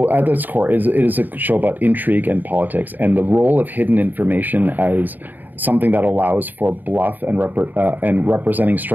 at its core, it is a show about intrigue and politics, and the role of hidden information as something that allows for bluff and representing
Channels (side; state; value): left; late; 0.088 ms